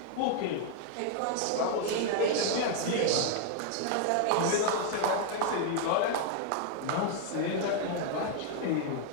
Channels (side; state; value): both; different; correlation 0.00